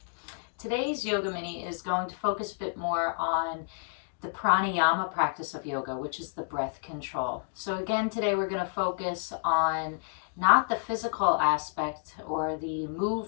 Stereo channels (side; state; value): right; silent; digital silence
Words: Today's yoga mini is going to focus a bit more on the pranayama practice of yoga, which is the breath control. So again, today we're going to focus on not the physical aspect or the